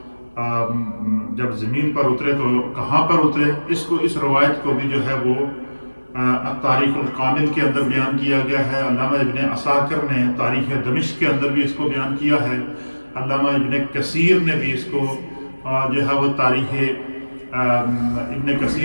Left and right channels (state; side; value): inverted; both; correlation -1.00